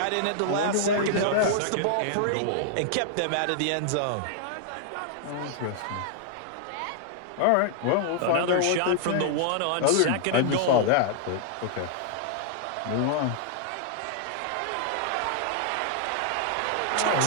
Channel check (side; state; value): both; different; correlation -0.01